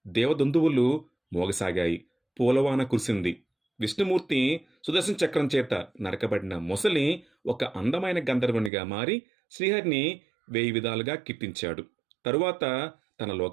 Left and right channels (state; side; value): drops out; left; at 8.7 s